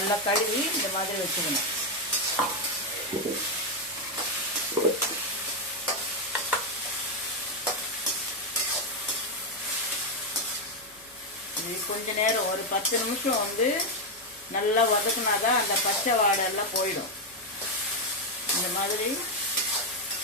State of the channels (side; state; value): left; noise; hum, 30 dB below the sound